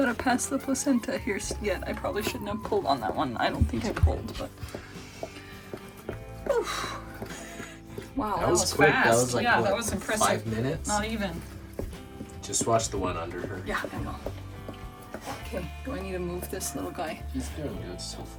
pass the placenta here yet. I probably shouldn't have pulled on that one. I don't think I pulled, but. Oof. Wow, that was quick. fast. That was like, yeah, what, that was impressive. 5 minutes? Not even. Just watch the one under her. Yeah, I will. Okay, do I need to move this little guy? He's doing good so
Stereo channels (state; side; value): identical; both; correlation 1.00